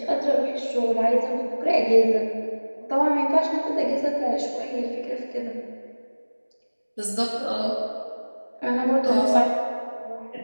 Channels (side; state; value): both; inverted; correlation -1.00